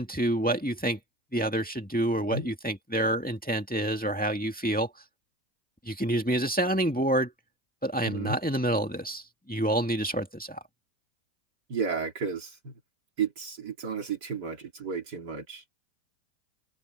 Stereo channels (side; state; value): both; normal; correlation 0.33